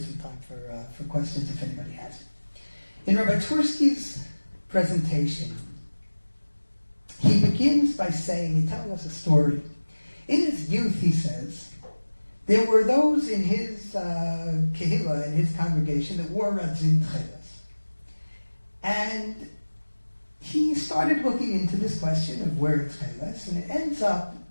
time for questions if anybody has. In Rabbi Twerski's presentation, he begins by saying, he's telling us a story. In his youth, he says, there were those in his kehillah, in his congregation, that wore radzin tcheles. And he started looking into this question of wearing tcheles, and it ends up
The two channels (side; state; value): both; inverted; correlation -1.00